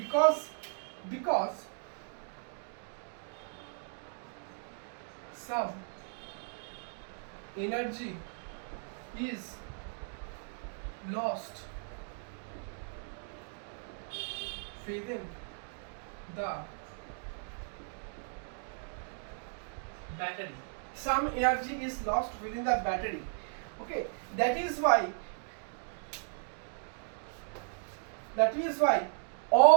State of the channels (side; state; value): left; silent; 54 dB below the other